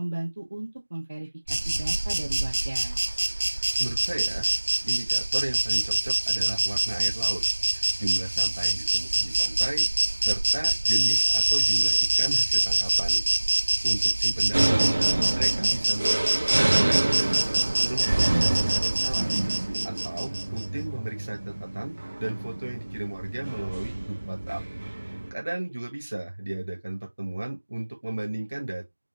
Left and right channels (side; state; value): both; inverted; correlation -1.00